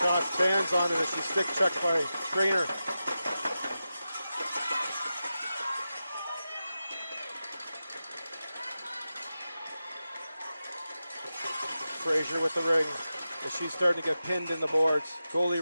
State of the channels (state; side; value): inverted; both; correlation -0.91